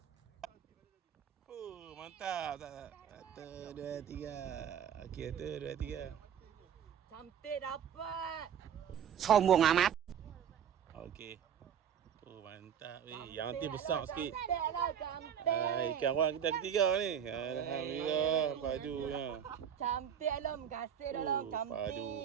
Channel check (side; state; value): left; quieter; 8.6 dB